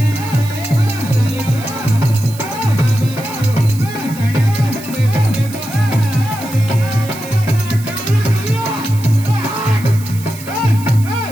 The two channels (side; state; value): right; noise; hiss, 16 dB below the sound